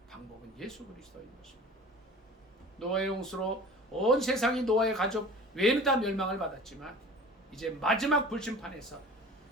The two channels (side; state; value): both; normal; correlation 0.42